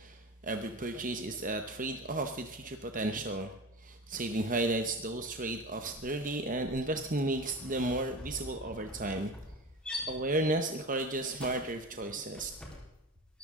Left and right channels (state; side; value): normal; both; correlation 0.29